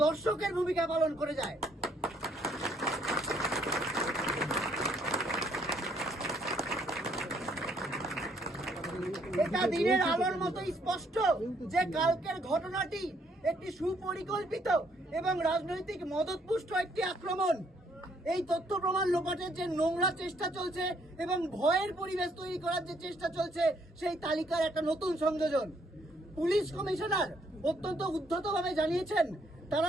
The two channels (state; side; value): normal; both; correlation 0.68